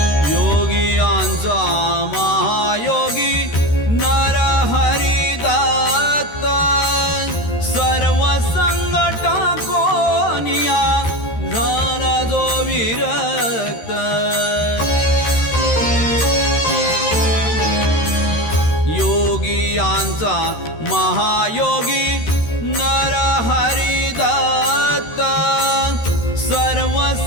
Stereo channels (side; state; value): right; late; 13 ms